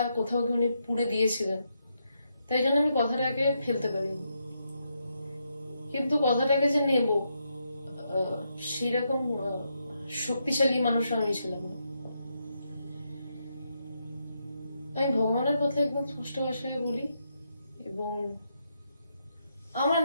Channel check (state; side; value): inverted; both; correlation -0.81